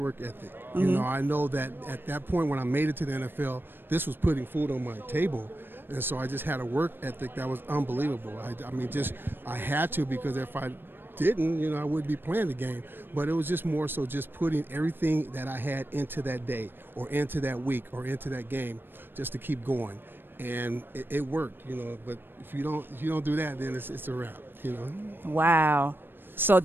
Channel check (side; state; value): left; late; 0.098 ms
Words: I know that at that point when I made it to the NFL, this was putting food on my table. And so I just had a work ethic that was unbelievable. I had to, because if I didn't, I wouldn't be playing the game. But it was just more so just putting everything that I had into that day or into that week or into that game just to keep going. And it worked, but if you don't do that, then it's a wrap, Wow. So